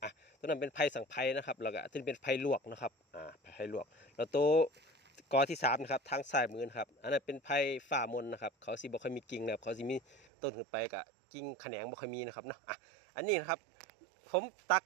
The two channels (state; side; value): drops out; left; at 10.2 s